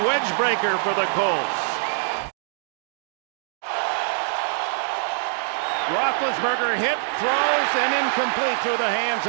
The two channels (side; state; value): left; silent; digital silence